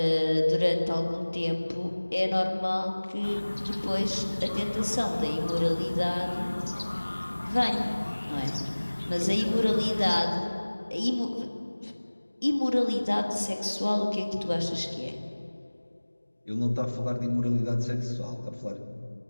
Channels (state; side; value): inverted; both; correlation -1.00